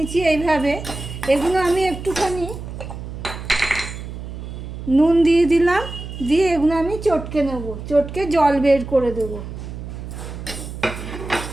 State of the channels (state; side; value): noise; right; hum, 9 dB below the sound